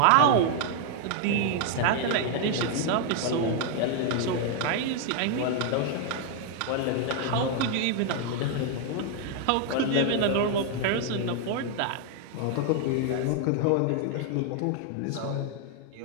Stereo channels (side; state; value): both; different; correlation 0.00